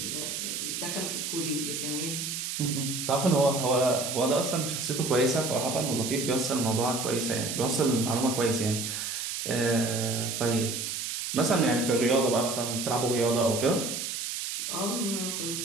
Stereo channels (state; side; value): noise; right; hiss, 4 dB below the sound